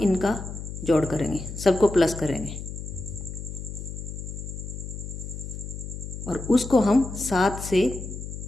जोड़ करेंगे, सबको प्लस करेंगे और उसको हम 7 से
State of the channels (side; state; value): left; noise; hum, 8 dB below the sound